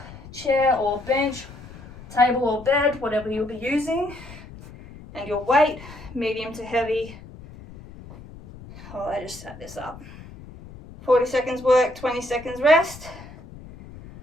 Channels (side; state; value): left; noise; rumble, 17 dB below the sound